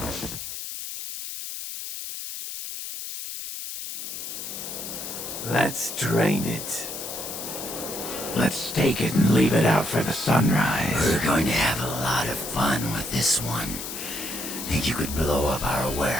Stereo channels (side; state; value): left; noise; hiss, 7 dB below the sound